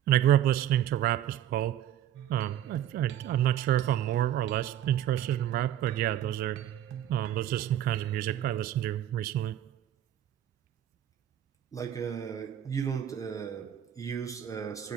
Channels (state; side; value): quieter; left; 11.3 dB